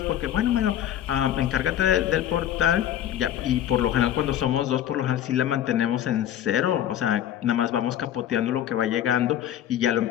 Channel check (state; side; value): quieter; right; 11.1 dB